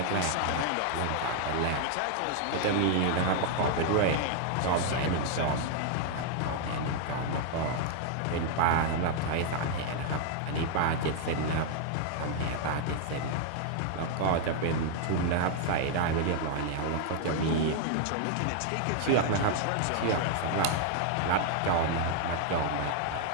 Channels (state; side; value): different; both; correlation 0.00